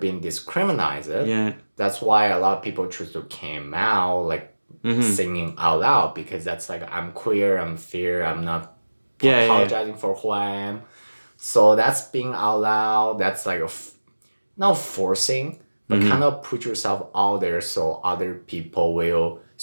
discriminated. Yeah. That's why a lot of people choose to came out like singing out loud, because that's like, I'm queer, I'm fair, I'm not apologizing for who I am. So that's being out loud. That's like not forcing, but kind of put yourself out there so other people will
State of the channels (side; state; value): both; inverted; correlation -1.00